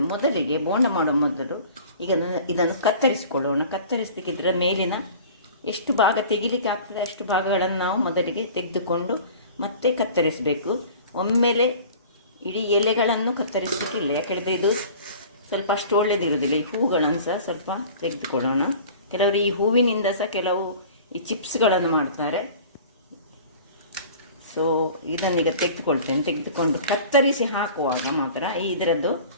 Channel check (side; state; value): both; inverted; correlation -0.43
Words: ಮೊದಲಿಗೆ ಬೋಂಡ ಮಾಡುವ ಮೊದಲು ಈಗ ಇದನ್ನು ಕತ್ತರಿಸಿಕೊಳ್ಳೋಣ. ಕತ್ತರಿಸಲಿಕ್ಕೆ ಇದರ ಮೇಲಿನ ಎಷ್ಟು ಭಾಗ ತೆಗಿಲಿಕ್ಕೆ ಆಗ್ತದೆ ಅಷ್ಟು ಭಾಗಗಳನ್ನು ನಾವು ಮೊದಲಿಗೆ ತೆಗೆದುಕೊಂಡು ಮತ್ತೆ ಕತ್ತರಿಸಬೇಕು. ಒಮ್ಮೆಲೆ ಇಡೀ ಎಲೆಗಳನ್ನು ಕತ್ತರಿಸಲಿಕ್ಕಿಲ್ಲ, ಯಾಕಂದರೆ ಇದು ಸ್ವಲ್ಪ ಅಷ್ಟು ಒಳ್ಳೆಯದಿರುವುದಿಲ್ಲ. ಈ ಹೂಗಳನ್ನು ಸಹ ಸ್ವಲ್ಪ ತೆಗೆದುಕೊಳ್ಳೋಣ. ಕೆಲವರು ಈ ಹೂವಿನಿಂದ ಸಹ ಕೆಲವು ಈ ಚಿಪ್ಸ್ಗಳನ್ನು ಮಾಡ್ತಾರೆ. ಸೊ ಇದನ್ನೀಗ ತೆಗೆದುಕೊಳ್ತೇನೆ. ತೆಗೆದುಕೊಂಡು ಕತ್ತರಿಸಿ ಹಾಕುವಾಗ ಮಾತ್ರ ಇದರದ್ದು